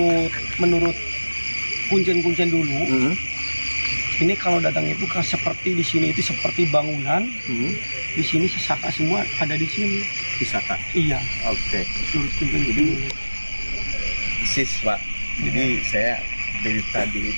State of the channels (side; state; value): both; inverted; correlation -1.00